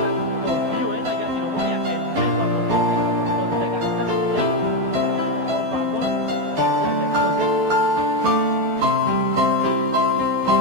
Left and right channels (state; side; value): late; left; 12 ms